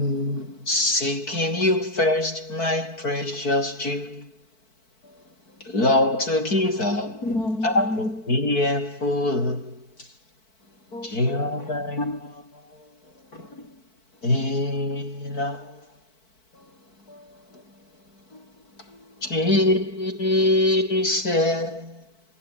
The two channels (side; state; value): right; late; 4.5 ms